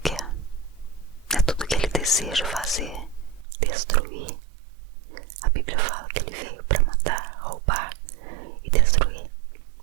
é tudo que ele deseja fazer, destruir. A Bíblia fala que ele veio para matar, roubar e destruir.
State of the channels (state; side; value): drops out; left; at 3.5 s